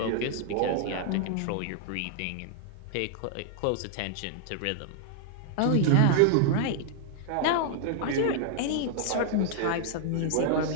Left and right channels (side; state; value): both; different; correlation -0.01